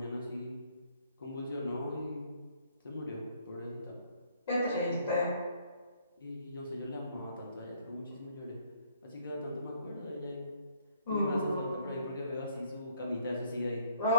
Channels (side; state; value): both; inverted; correlation -0.66